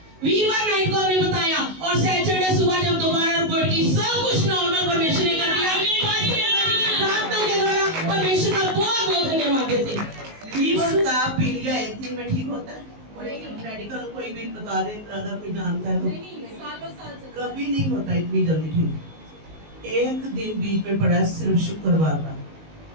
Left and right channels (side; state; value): left; late; 19 ms